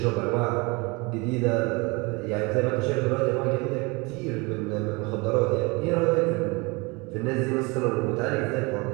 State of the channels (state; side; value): quieter; left; 27.1 dB